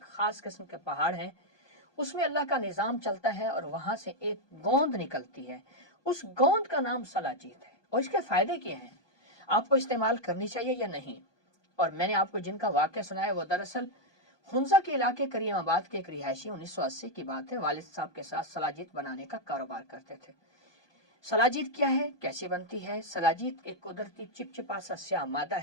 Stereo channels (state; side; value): late; right; 1.2 ms